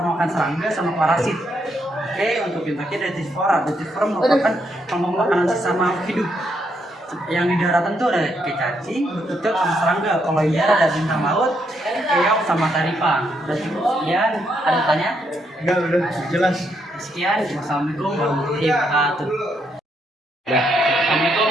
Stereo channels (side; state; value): both; normal; correlation 0.76